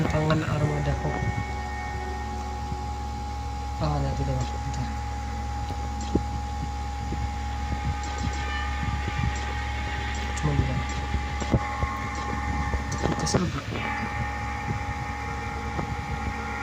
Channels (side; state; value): both; identical; correlation 1.00